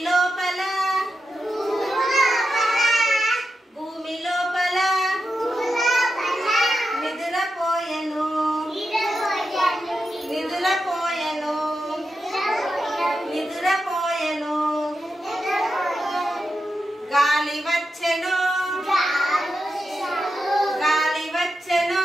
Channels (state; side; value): normal; both; correlation 0.88